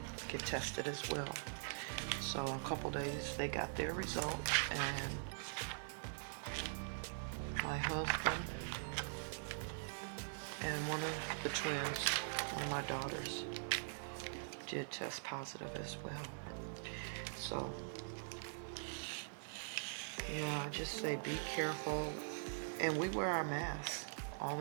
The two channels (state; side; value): silent; left; digital silence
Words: get tested as well. So in a couple days they got their results, and my husband and one of the twins, one of my daughters, did test positive as well. So, yeah, I just say be careful. And we wear our masks all